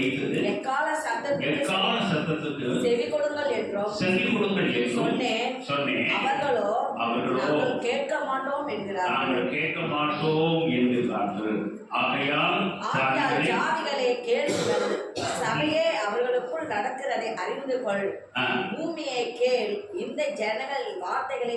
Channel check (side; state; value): both; identical; correlation 1.00